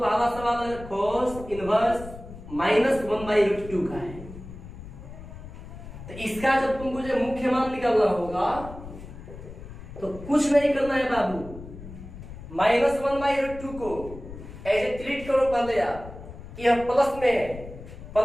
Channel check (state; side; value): noise; left; rumble, 14 dB below the sound